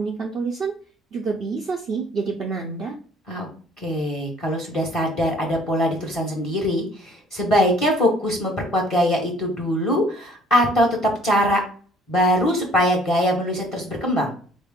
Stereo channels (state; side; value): normal; both; correlation 0.57